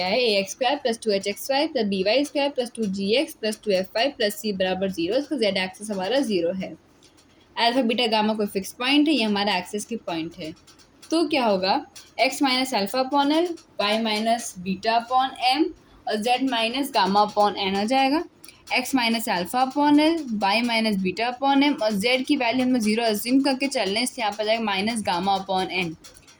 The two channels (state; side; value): identical; both; correlation 1.00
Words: है a x square plus 2hxy plus B Y square plus 2gx plus 2fy plus c बराबर 0। इसका z एक्सिस हमारा 0 है। अल्फा बीटा गामा कोई फिक्स पॉइंट है, ये हमारा एक्सिस की पॉइंट है। तो क्या होगा, x minus alpha upon L, y minus beta upon M और z minus gamma upon N हो जाएगा। x minus alpha upon L, y minus beta upon M और z की वैल्यू हमें 0 अज्यूम करके चल रहे हैं, इसलिए यहाँ पर जाएगा माइनस गामा अपॉन एन।